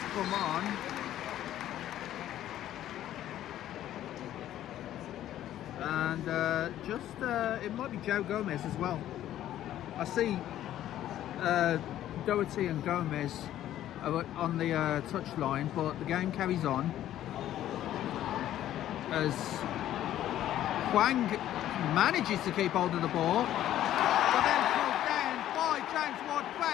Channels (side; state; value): right; quieter; 12.4 dB